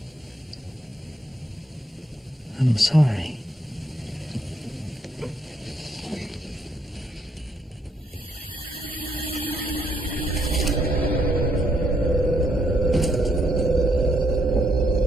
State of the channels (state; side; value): normal; both; correlation 0.73